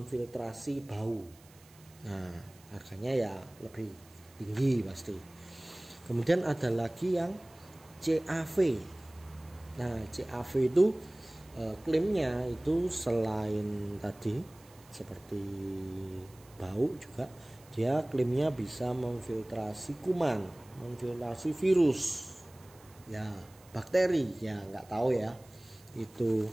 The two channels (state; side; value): noise; right; hiss, 26 dB below the sound